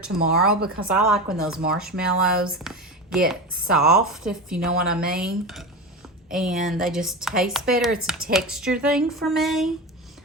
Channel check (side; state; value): both; normal; correlation 0.24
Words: because I like when those marshmallows get soft, if you know what I mean. And they just taste better. It's a texture thing for me.